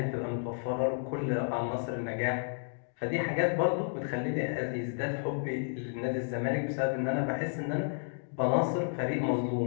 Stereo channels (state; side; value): silent; right; digital silence